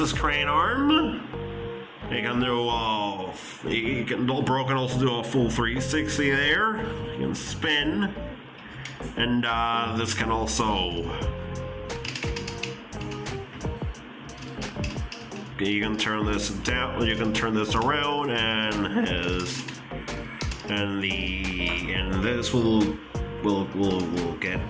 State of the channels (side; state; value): both; identical; correlation 1.00